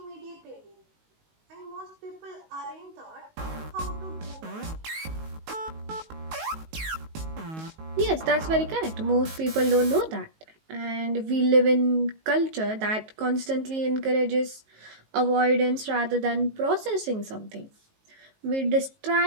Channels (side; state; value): left; late; 19 ms